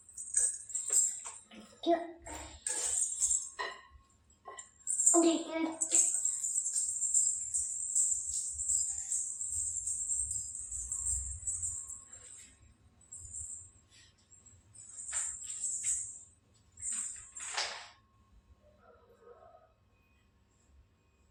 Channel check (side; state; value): both; identical; correlation 1.00